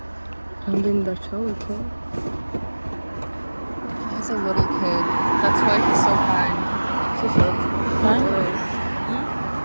რამდენი დარჩაო იქო a little kid. That's why he's so kind. So sweet.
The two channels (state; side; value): inverted; both; correlation -1.00